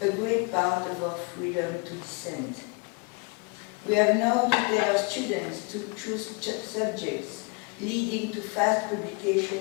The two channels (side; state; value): right; quieter; 30.9 dB